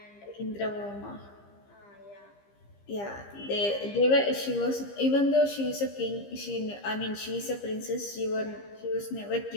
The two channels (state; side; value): late; right; 15 ms